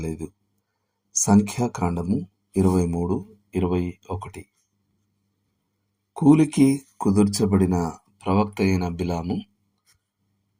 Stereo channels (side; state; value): both; identical; correlation 1.00